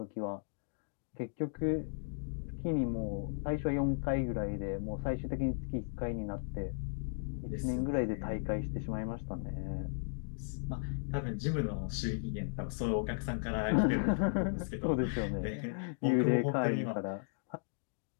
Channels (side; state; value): right; silent; digital silence